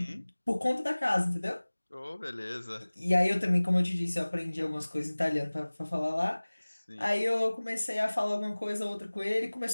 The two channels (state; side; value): inverted; both; correlation -1.00